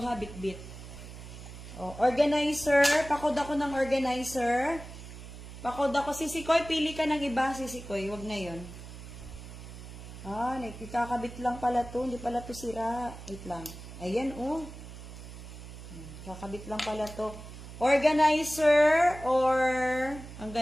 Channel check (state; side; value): noise; right; hum, 13 dB below the sound